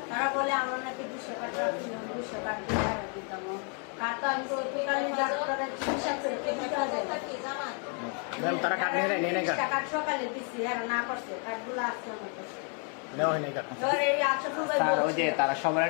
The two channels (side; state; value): right; quieter; 39.9 dB